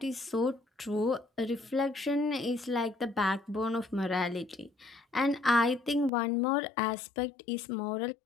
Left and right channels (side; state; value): right; drops out; at 6.1 s